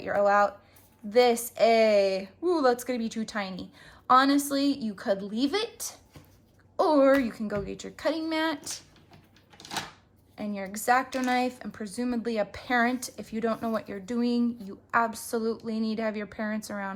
your O out. This A. Ooh, that's going to be too tiny. Honestly, you could leave it. Or you can go get your cutting mat and your X-Acto knife, and presumably a parent. If you don't know what you're doing, you absolutely need to have your parents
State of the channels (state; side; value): identical; both; correlation 1.00